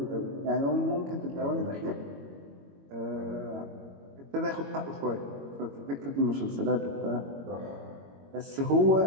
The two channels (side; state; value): left; late; 22 ms